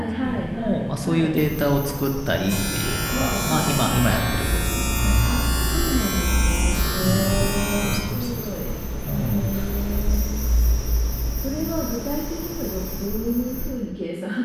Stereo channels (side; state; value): both; identical; correlation 1.00